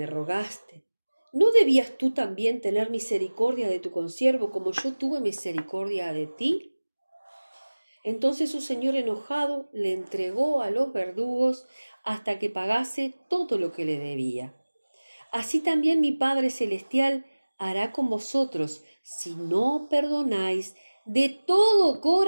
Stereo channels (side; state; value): both; inverted; correlation -1.00